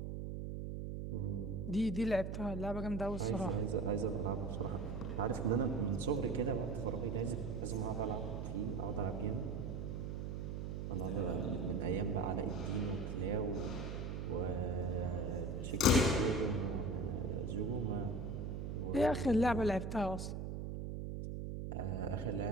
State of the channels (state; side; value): noise; right; hum, 4 dB below the sound